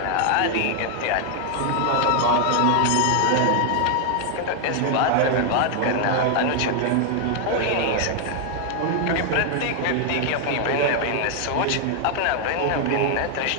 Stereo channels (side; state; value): both; different; correlation 0.00